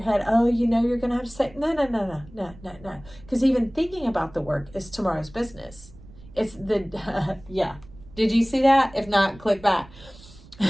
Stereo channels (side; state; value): right; noise; rumble, 21 dB below the sound